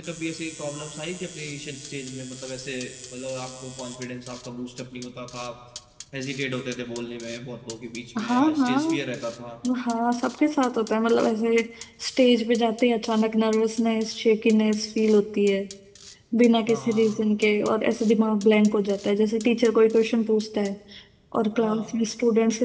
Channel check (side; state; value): both; identical; correlation 1.00